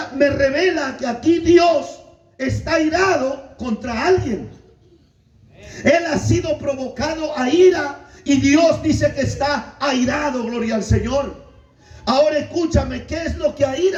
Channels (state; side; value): identical; both; correlation 1.00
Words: me revela que aquí Dios está airado contra alguien. Él ha sido provocado a ira y Dios dice que está airado, gloria al Señor. Ahora escúchame, ¿qué es lo que